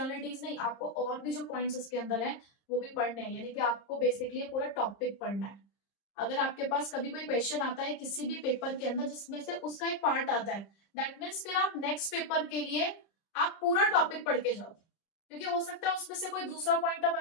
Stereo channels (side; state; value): right; late; 30 ms